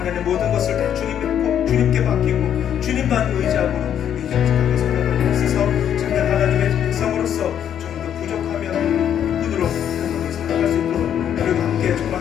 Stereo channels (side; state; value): right; quieter; 9.5 dB